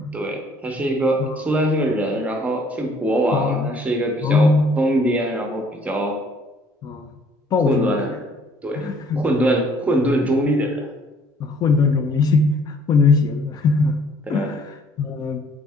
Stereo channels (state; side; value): normal; both; correlation 0.61